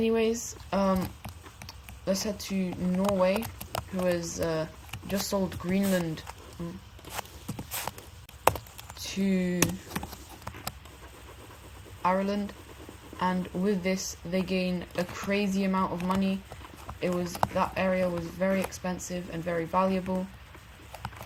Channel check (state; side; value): identical; both; correlation 1.00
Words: let's head to Norway, who has just sold Greenland to Ireland, and with this they gain a crazy amount of money. That area was very expensive and very valuable,